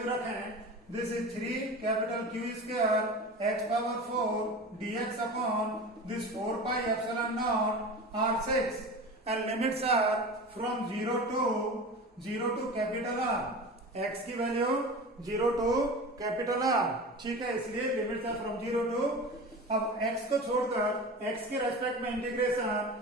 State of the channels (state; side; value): normal; both; correlation 0.32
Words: रखें, this is 3 capital Q square x power 4 dx upon this 4 pi epsilon naught R6 and limits are from 0 to capital R, x की वैल्यू 0 टू कैपिटल R, ठीक है, इसलिए लिमिट्स आर फ्रॉम 0 टू, अब x को छोड़कर x के respect में integration,